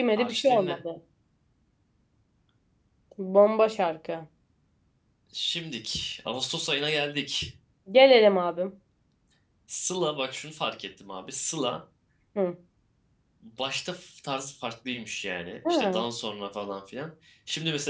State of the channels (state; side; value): identical; both; correlation 1.00